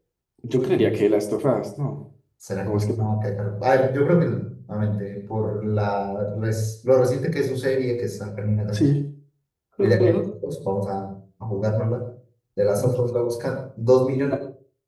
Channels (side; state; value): both; identical; correlation 1.00